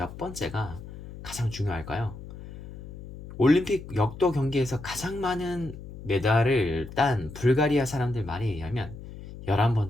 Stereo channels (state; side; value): noise; left; hum, 13 dB below the sound